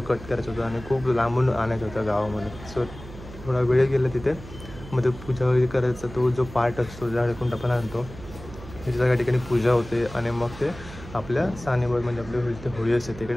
कट करायचं होतं आणि खूप लांबून आणायचं होतं गावामध्ये. सो थोडा वेळ गेला तिथे. मग ते पूजा वगैरे करायचा तो जो पार्ट असतो ज्याकडून आपण आणतो त्याच्या सगळ्या ठिकाणी पूजा होते आणि मग ते आपल्या सानेवर म्हणजे आपली होळी असते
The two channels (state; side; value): noise; right; hum, 15 dB below the sound